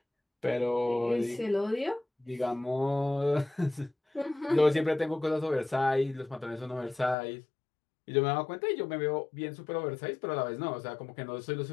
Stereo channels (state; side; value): drops out; right; at 7.2 s